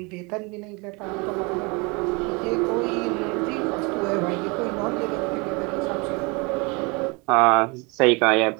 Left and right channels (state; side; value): quieter; left; 28.8 dB